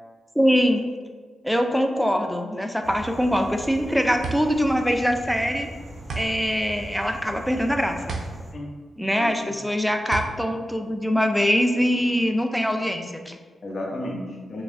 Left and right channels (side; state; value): both; normal; correlation 0.94